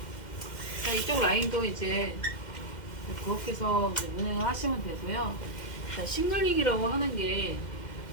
자, 이쪽 라인도 이제 그렇게 해서 운행을 하시면 되고요. 자, 싱글링이라고 하는 게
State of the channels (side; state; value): right; late; 2.1 ms